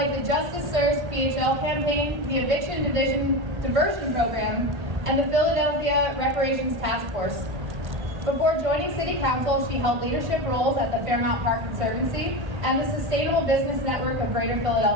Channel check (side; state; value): left; late; 1.5 ms